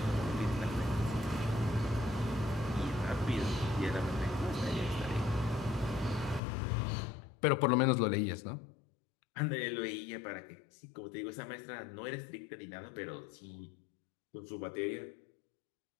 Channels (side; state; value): right; drops out; at 6.4 s